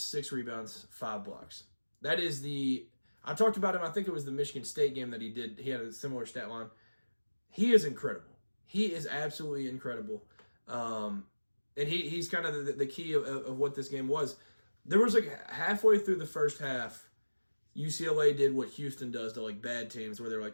6 rebounds, 5 blocks. That is I talked about him, I think it was the Michigan State game that he did. He had a similar stat line. He is incredible. He is absolutely incredible. And he's kind of the key of what this game was. There was like halfway through the first half, UCLA did what Houston does to like bad teams, where they're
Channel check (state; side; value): inverted; both; correlation -1.00